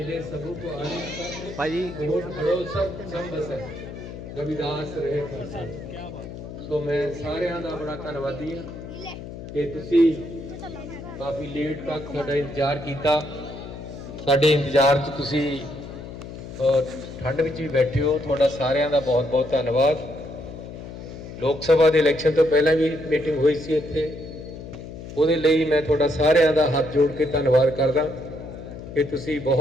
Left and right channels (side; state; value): left; noise; hum, 11 dB below the sound